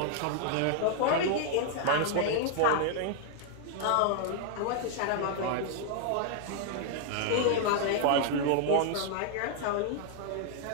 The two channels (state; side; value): different; both; correlation 0.00